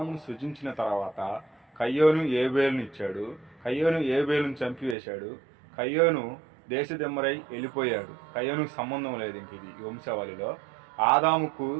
సృజించిన తర్వాత కయ్యోను ఏబేలును ఇచ్చాడు. కయ్యోను ఏబేలును చంపివేశాడు. కయ్యోను దేశదిమ్మరై వెళ్ళిపోయాడు. కయ్యోనుకు సంబంధం లేదు ఇంక ఇది వంశావళిలో. ఆదాముకు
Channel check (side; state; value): left; drops out; at 5.0 s